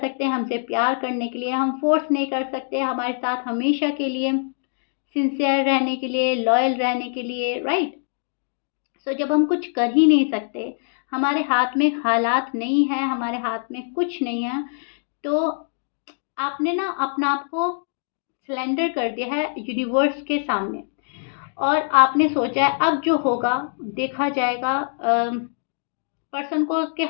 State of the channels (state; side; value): silent; right; digital silence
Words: हमसे प्यार करने के लिए, हम फोर्स नहीं कर सकते हमारे साथ हमेशा के लिए सिंसियर रहने के लिए, लॉयल रहने के लिए। राइट। सो जब हम कुछ कर ही नहीं सकते, हमारे हाथ में हालात नहीं है, हमारे हाथ में कुछ नहीं है, तो आपने ना अपना आप को सिलेंडर कर दिया है यूनिवर्स के सामने। और आपने सोचा है अब जो होगा देखा जाएगा। पर्सन को उसके